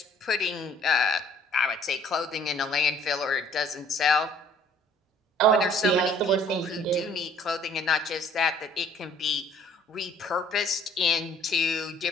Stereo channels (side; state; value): both; normal; correlation 0.58